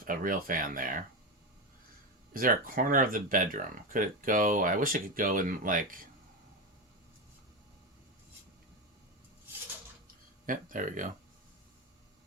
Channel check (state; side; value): normal; both; correlation 0.15